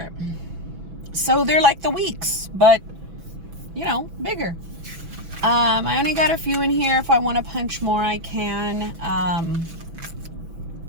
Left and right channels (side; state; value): left; late; 6.1 ms